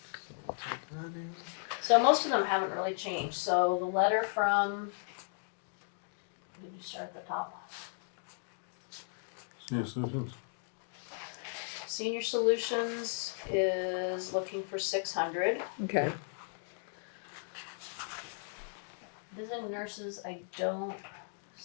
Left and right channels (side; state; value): right; silent; digital silence